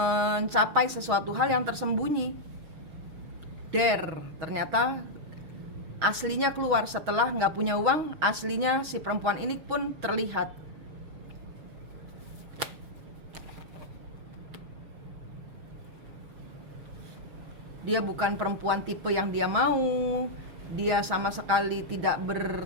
sesuatu hal yang tersembunyi. Ternyata aslinya keluar setelah nggak punya uang, aslinya si perempuan ini pun terlihat. Dia bukan perempuan tipe yang dia mau. Dia sama sekali tidak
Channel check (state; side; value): late; left; 6.3 ms